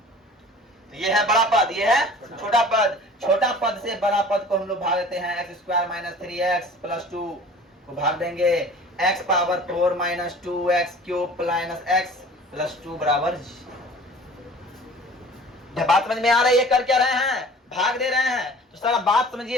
ये है बड़ा पद, ये है छोटा पद। छोटा पद से बड़ा पद को हम लोग भाग देते हैं। x² - 3x + 2 को भाग देंगे x⁴ - 2x³ - x + 2 बराबर। जब बात समझ में आ रही है, कर क्या रहे हैं? भाग दे रहे हैं। तो सारा बात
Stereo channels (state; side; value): normal; both; correlation 0.45